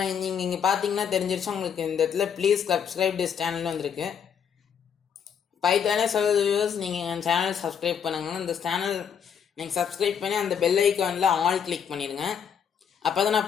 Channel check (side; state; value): right; quieter; 7.6 dB